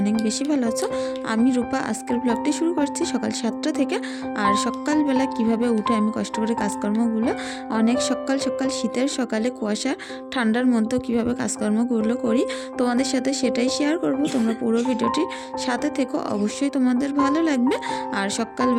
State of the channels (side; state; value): both; identical; correlation 1.00